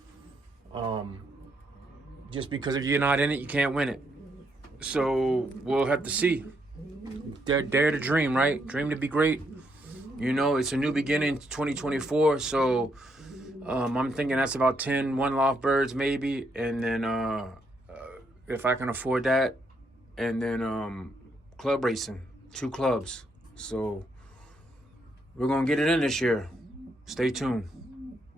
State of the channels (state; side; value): normal; both; correlation 0.76